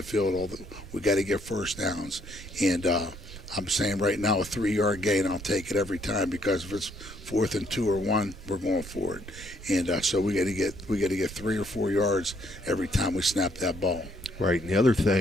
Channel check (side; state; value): right; noise; rumble, 14 dB below the sound